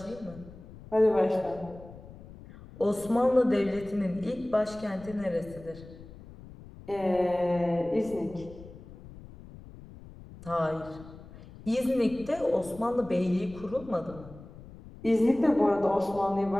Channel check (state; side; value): noise; left; rumble, 18 dB below the sound